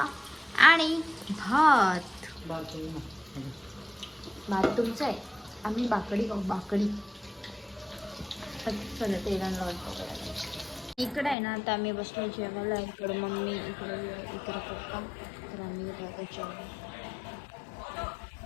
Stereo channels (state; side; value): drops out; right; at 11.4 s